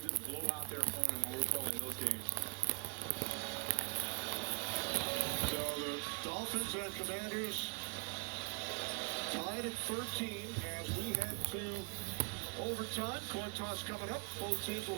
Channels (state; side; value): quieter; left; 37.3 dB